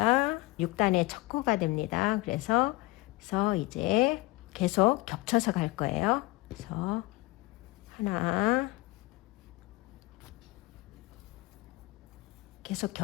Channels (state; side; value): quieter; right; 21.7 dB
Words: 6단의 첫 코가 됩니다. 그래서 이제 계속 겹쳐서 갈 거예요. 그래서 하나, 계속